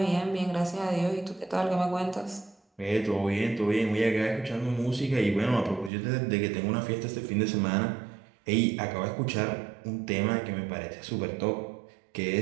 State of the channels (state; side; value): drops out; left; at 5.9 s